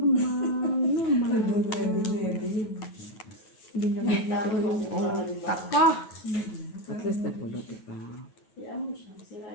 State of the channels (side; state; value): right; late; 9.3 ms